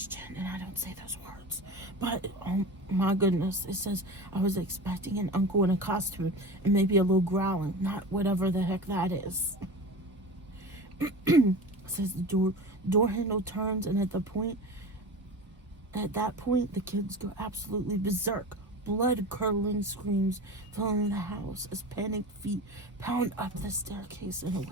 and I don't say those words. But oh my goodness, it says, I was expecting an uncle in a costume and maybe a little growling, not whatever the heck that is. It says the door handle turns, and at that point the kids go absolutely berserk. Blood-curdling screams filling the house as panicked feet pound up the staircase and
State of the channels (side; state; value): both; normal; correlation 0.31